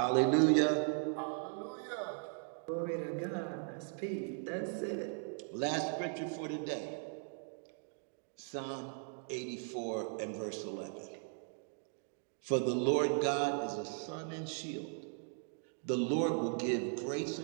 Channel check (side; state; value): left; silent; 52 dB below the other